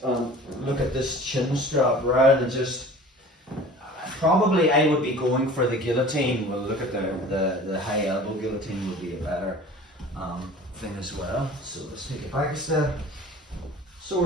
look at this chin strap rather than just, probably I would be going for the guillotine. We'll look at the high elbow guillotine would be a better thing as well. So let's take it back a step. So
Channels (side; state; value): both; normal; correlation 0.43